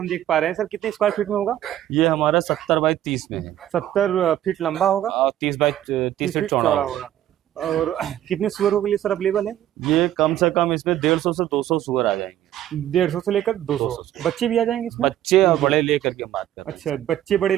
देख पा रहे हैं सर, कितने स्क्वायर फीट में होगा? ये हमारा 70 बाई 30 में है। 70 फीट लंबा होगा और 30 बाई 30 फीट चौड़ा होगा। और कितने सुअरों के लिए सर अवेलेबल है? ये कम से कम इसमें 150 से 200 सुअर आ जाएंगे। 150 से लेकर 200 बच्चे भी आ जाएंगे इसमें? बच्चे और बड़े लेकर के बात कर रहे हैं। अच्छा, बच्चे बड़े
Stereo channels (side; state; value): left; quieter; 12.3 dB